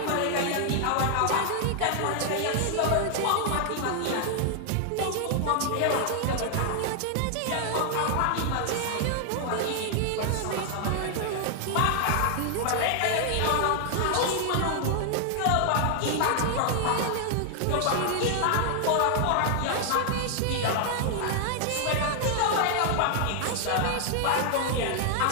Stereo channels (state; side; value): different; both; correlation 0.00